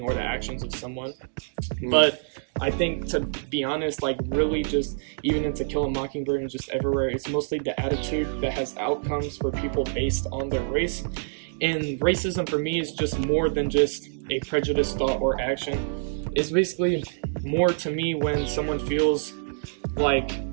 or the actions of someone. But I think, to be honest, really just even in To Kill a Mockingbird and just everywhere, it's mostly the attitude that has outcomes for people based on their race. And racism for me is just more than just a prejudiced thought or action. It's basically more to me when someone feels like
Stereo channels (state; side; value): silent; left; digital silence